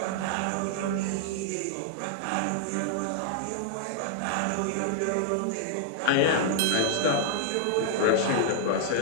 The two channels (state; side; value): different; both; correlation -0.01